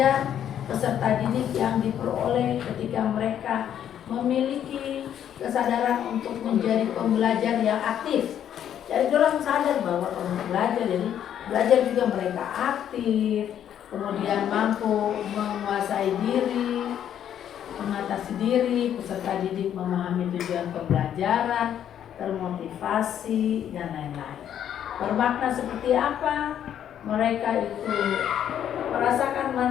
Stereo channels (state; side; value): quieter; right; 9.9 dB